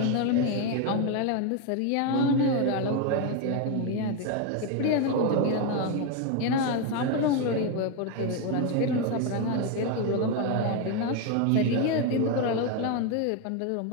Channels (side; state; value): both; different; correlation 0.02